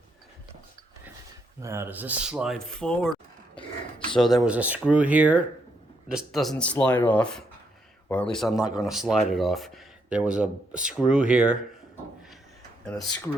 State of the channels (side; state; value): both; normal; correlation 0.76